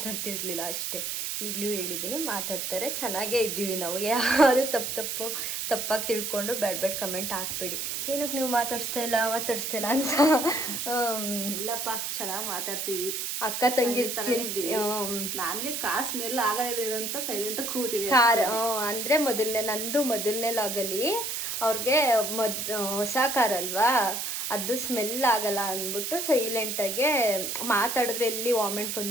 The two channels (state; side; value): noise; right; hiss, 3 dB below the sound